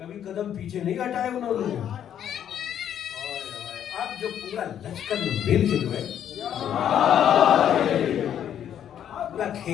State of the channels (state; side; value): quieter; right; 9.8 dB